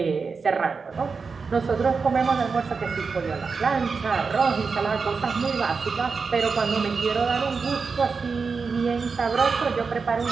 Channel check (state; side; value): quieter; left; 5.0 dB